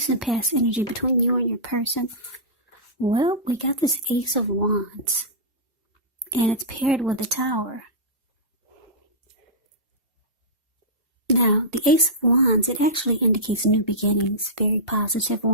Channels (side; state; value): both; normal; correlation -0.16